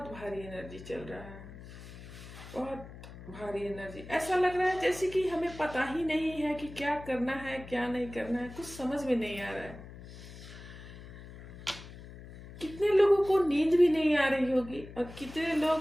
भारी एनर्जी चल रहा है, बहुत भारी एनर्जी। ऐसा लग रहा है जैसे कि हमें पता ही नहीं है कि क्या करना है क्या नहीं करना है, कुछ समझ में नहीं आ रहा है। कितने लोगों को नींद भी नहीं आ रही होगी और कितने लोग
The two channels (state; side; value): noise; left; hum, 15 dB below the sound